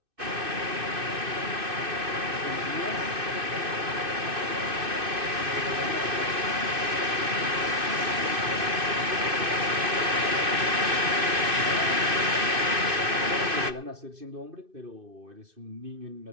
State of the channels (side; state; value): left; late; 2.6 ms